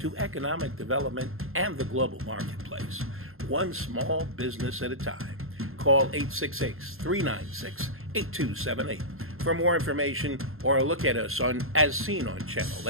economic development and the global marketplace, one small business at a time. Call 866-396-8278 for more information or look at us on as seen on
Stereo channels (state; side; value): late; left; 0.61 ms